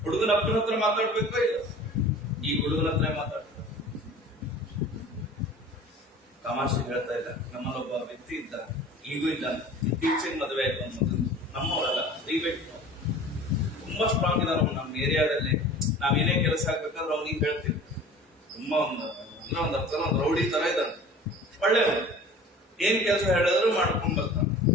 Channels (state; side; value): normal; both; correlation 0.43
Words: ಹುಡುಗನ ಅಪ್ಪನ ಹತ್ರ ಮಾತಾಡ್ಬೇಕೋ ಇಲ್ಲ? ಈ ಹುಡುಗನ ಹತ್ರ ಮಾತಾಡ್ತಾರೆ. ತಮಾಷೆ ಹೇಳ್ತಾ ಇಲ್ಲ. ನಮ್ಮಲ್ಲೊಬ್ಬ ವ್ಯಕ್ತಿ ಇದ್ದ, ಈಗೂ ಇದ್ದ. ಇತ್ತೀಚೆಗೆ ಮದುವೆ ಆಯ್ತು ಅನ್ನೋದು. ನಮ್ಮವರಲ್ಲ, ದಯವಿಟ್ಟು ತುಂಬಾ ಸ್ಟ್ರಾಂಗ್ ಇದಾರ ನಮ್ಮ ಏರಿಯಾದಲ್ಲಿ. ನಾವೇನೇ ಕೆಲಸ ಆಗ್ಬೇಕಾದ್ರೆ ಅವ್ನಿಗೆ ಹೇಳ್ತೀವಿ. ತುಂಬಾ ಒಂದು ಅರ್ಥ ಒಂದು ರೌಡಿ ತರ ಇದ್ದಾನೆ, ಒಳ್ಳೆಯವನು. ಏನ್ ಕೆಲಸ ಹೇಳಿದ್ರು ಮಾಡ್ಕೊಂಡ್ ಬರ್ತಾನೆ.